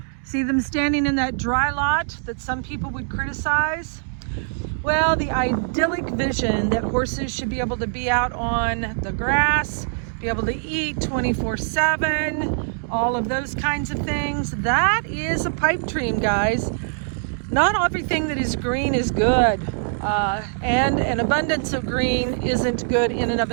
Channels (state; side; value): silent; left; digital silence